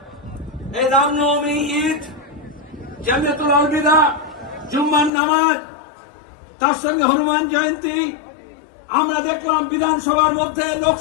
এই রামনবমী, ঈদ, জামিয়াতুল আলবিদা, জুম্মার নামাজ, তার সঙ্গে হনুমান জয়ন্তী, আমরা দেখলাম বিধানসভার মধ্যে,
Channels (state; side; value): drops out; right; at 5.1 s